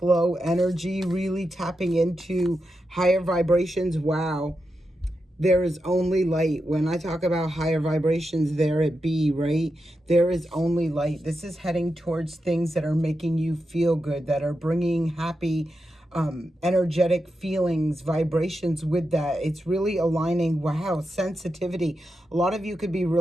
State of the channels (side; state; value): both; normal; correlation 0.88